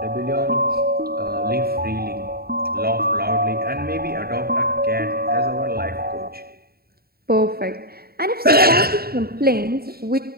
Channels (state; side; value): late; left; 0.45 ms